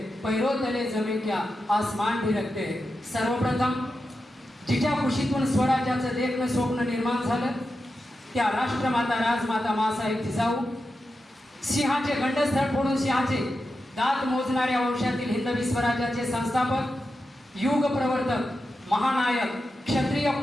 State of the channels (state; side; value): normal; both; correlation 0.90